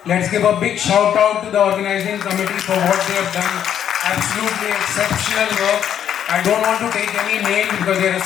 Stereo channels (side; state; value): right; quieter; 9.6 dB